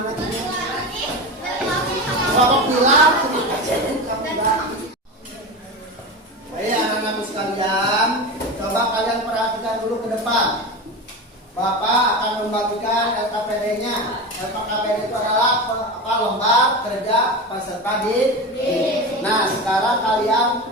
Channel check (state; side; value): normal; both; correlation 0.24